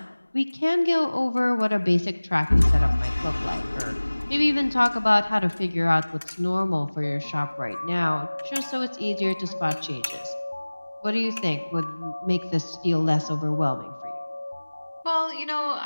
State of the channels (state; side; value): inverted; both; correlation -1.00